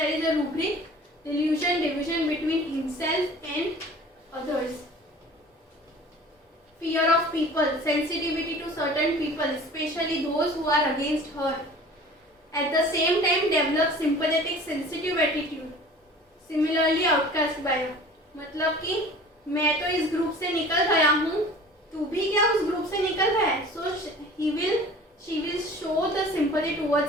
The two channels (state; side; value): normal; both; correlation 0.44